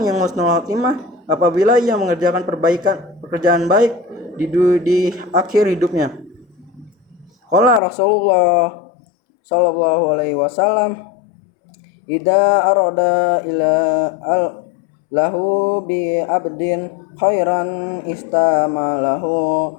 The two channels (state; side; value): drops out; right; at 7.8 s